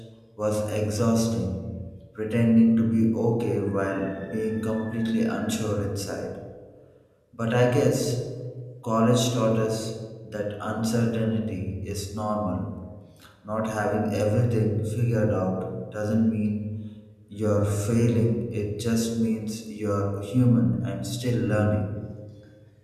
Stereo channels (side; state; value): both; identical; correlation 1.00